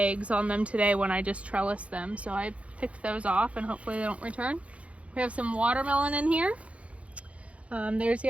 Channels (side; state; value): left; late; 0.063 ms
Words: on them today when I just trellised them, so I picked those off and hopefully they don't return. We have some watermelon in here. There's